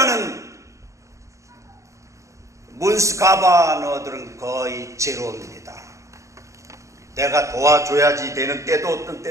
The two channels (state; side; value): late; left; 0.15 ms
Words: 문스 가바너들은 거의 제로입니다. 내가 도와줘야지 되는 때도 어떤